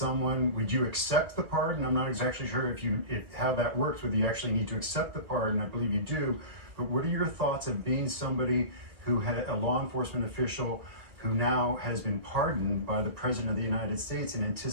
Would you accept the pardon? I'm not exactly sure if how that works, whether you actually need to accept the pardon. I believe you do. But what are your thoughts of being somebody who had a law enforcement official who now has been pardoned by the President of the United States in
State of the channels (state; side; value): late; left; 1.7 ms